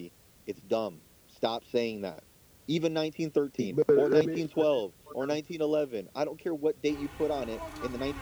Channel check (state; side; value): identical; both; correlation 1.00